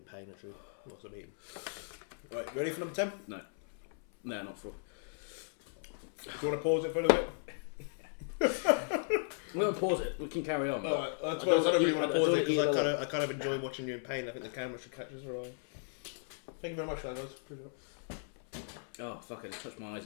pain, actually. Lots of eating. Right, ready for number 10? No, not for. Do you want to pause it for a little bit? We're gonna pause it. We can carry on. Alright, I don't really want to pause it because either I kind of enjoy watching you in pain. I think the camera should catch us right. Thank you very much for that, guys. Appreciate it. Oh fuck! I just touched my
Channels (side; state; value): right; silent; 54 dB below the other